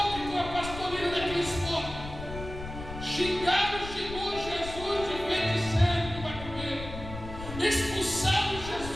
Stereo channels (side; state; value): left; noise; rumble, 10 dB below the sound